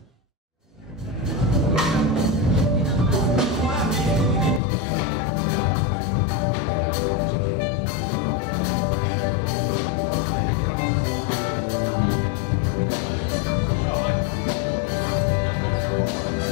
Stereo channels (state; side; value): drops out; right; at 4.6 s